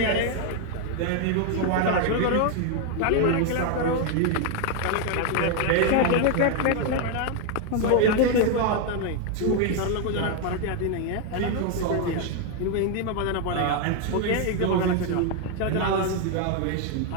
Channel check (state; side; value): different; both; correlation 0.01